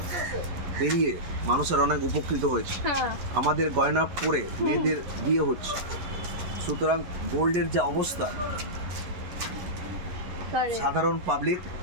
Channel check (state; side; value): late; left; 11 ms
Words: বেরিয়ে মানুষের অনেক উপকৃত হয়েছে। হ্যাঁ, আমাদের গয়না পরে মেয়েদের বিয়ে হচ্ছে, সুতরাং গোল্ডের যা অবস্থা, correct। সাধারণ পাবলিক